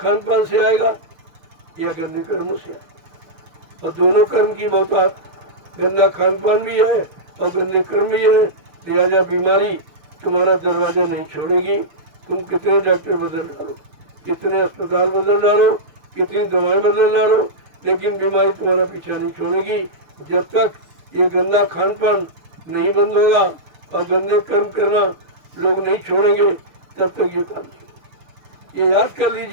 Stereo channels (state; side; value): late; left; 6.4 ms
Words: पान से आएगा या गंदे कर्मों से आएगा। और दोनों कर्म की बहुतायत, गंदा खान पान भी है और गंदे कर्म भी है। लिहाजा बीमारी तुम्हारा दरवाजा नहीं छोड़ेगी। तुम कितने डॉक्टर बदल डालो, कितने अस्पताल बदल डालो, कितनी दवाएं बदल डालो, लेकिन बीमारी तुम्हारा पीछा नहीं छोड़ेगी। जब तक ये गंदा खान पान नहीं बंद होगा और गंदे कर्म करना लोग नहीं छोड़ेंगे, तब तक ये काम नहीं। ये याद कर